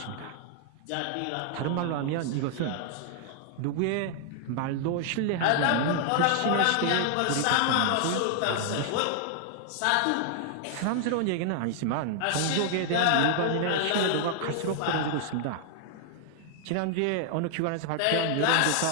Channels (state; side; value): different; both; correlation 0.00